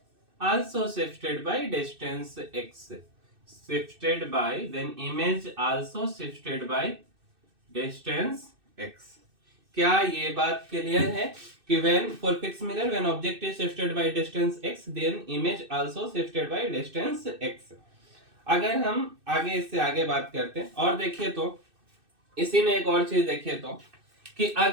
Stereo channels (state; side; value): late; left; 2.6 ms